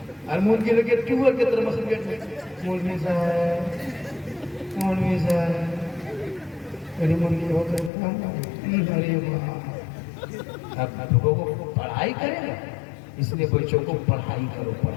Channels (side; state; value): right; drops out; at 7.9 s